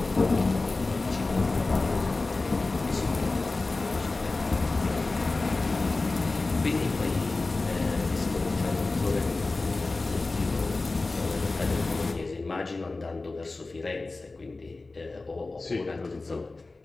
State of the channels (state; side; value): quieter; right; 3.4 dB